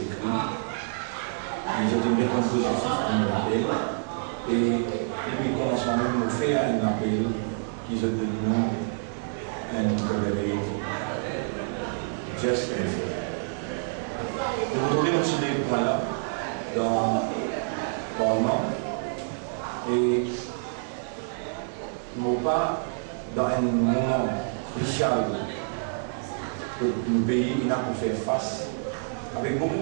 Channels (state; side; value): silent; left; digital silence